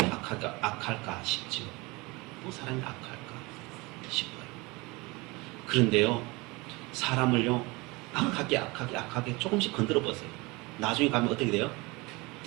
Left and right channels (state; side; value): quieter; left; 24.5 dB